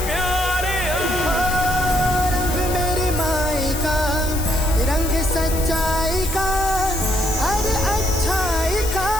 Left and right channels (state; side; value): noise; left; hiss, 8 dB below the sound